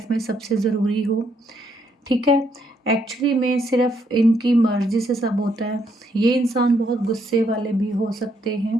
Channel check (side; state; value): both; normal; correlation 0.74